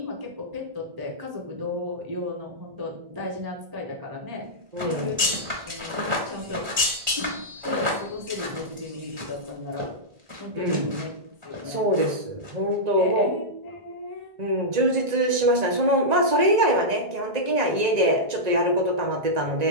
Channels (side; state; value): left; late; 1.5 ms